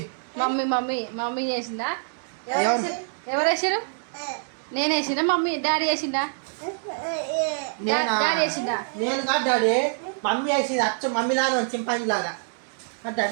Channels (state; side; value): silent; left; digital silence